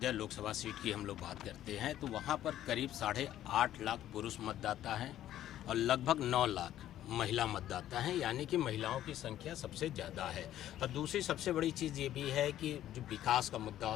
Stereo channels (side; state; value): right; quieter; 12.4 dB